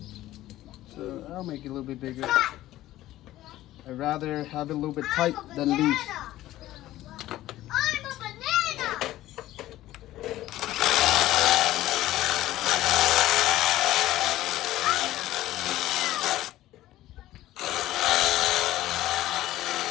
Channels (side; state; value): right; quieter; 15.0 dB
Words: So I'll make it a little bit bigger. I'd rather have it a little bit tight than loose. I'm a banana.